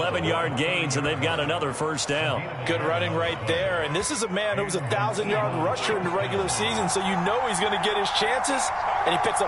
gains, and they've got another first down. Good running right there. And this is a man who was a 1,000-yard rusher in the regular season, so you know he's going to get his chances, and he picks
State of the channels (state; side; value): identical; both; correlation 1.00